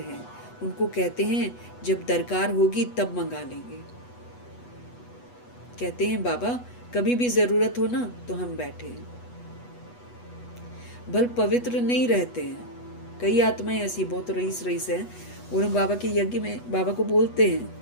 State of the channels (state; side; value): late; right; 8.2 ms